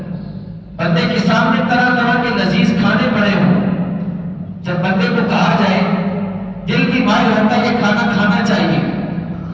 بندے کے سامنے طرح طرح کے لذیذ کھانے پڑے ہوں، جب بندے کو کہا جائے دل کی مائل ہوتا ہے یہ کھانا کھانا چاہیے،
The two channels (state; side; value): identical; both; correlation 1.00